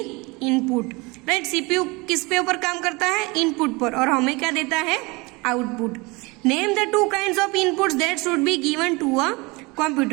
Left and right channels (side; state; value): left; quieter; 25.5 dB